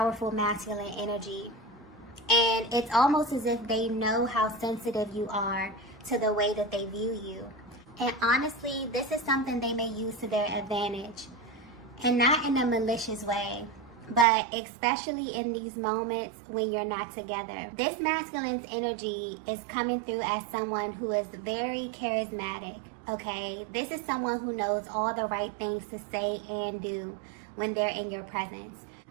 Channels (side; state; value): left; drops out; at 14.2 s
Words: masculine energy. And it's almost as if they know how sensitive you are to the way that they view you. And honestly, this is something they may use to their advantage. And not in a malicious way, but especially in these moments when you're not together. This masculine's energy is coming through as someone who is very charismatic, okay? This is someone who knows all the right things to say and do when they're in your presence.